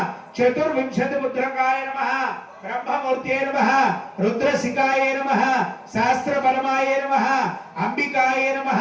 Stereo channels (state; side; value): identical; both; correlation 1.00